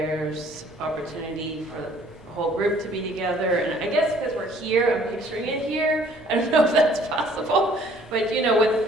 opportunity for the whole group to be together. And I guess because we're here, I'm picturing it here. I don't know if that's possible, but you know, with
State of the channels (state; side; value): normal; both; correlation 0.58